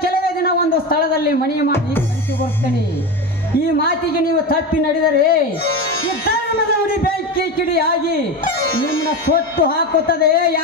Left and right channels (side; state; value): both; normal; correlation 0.21